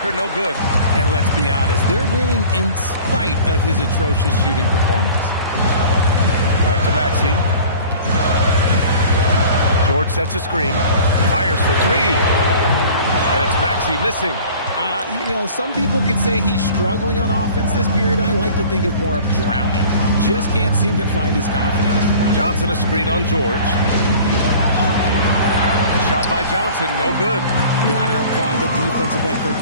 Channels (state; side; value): inverted; both; correlation -0.45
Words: no good. And let's be honest, they're winning in spite of his atrocious shooting performance. Back to Maxey. George sets a screen, fires for 3, and it's Maxey missing. Some people could say he's struggling on offense this period. I like to think of more of drowning. Just can't seem to find his confidence. Johnson a screen on George. The shot by Johnson, no good. Gotta applaud the defensive effort.